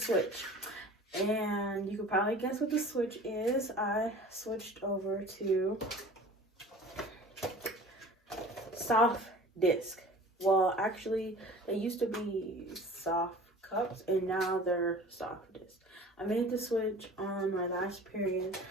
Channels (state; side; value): normal; both; correlation 0.43